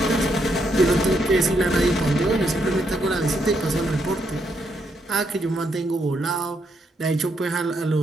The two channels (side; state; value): both; normal; correlation 0.77